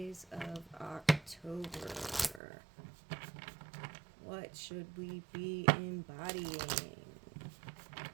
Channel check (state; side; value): drops out; left; at 2.4 s